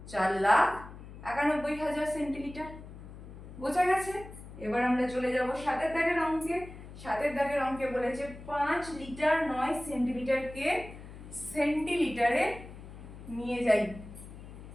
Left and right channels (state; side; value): noise; left; hum, 15 dB below the sound